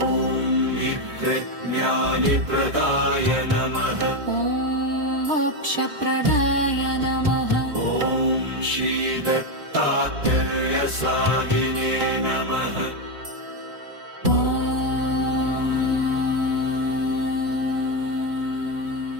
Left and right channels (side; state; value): left; late; 3.5 ms